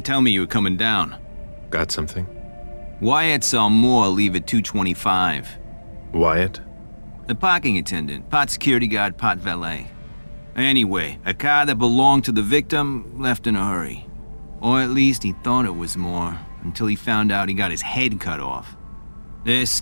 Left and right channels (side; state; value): both; inverted; correlation -1.00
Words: tell me you were coming down. Got something? Wyatt saw Moore leave at 2:25. Wyatt? The parking attendant, part security guard, part valet. Anyway, a car that belonged to the victim left in a hurry. Or at least he thought it was Moore, until he found out he got his head cut off. There's